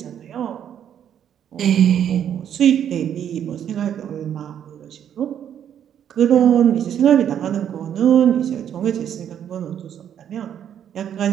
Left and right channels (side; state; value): left; quieter; 9.4 dB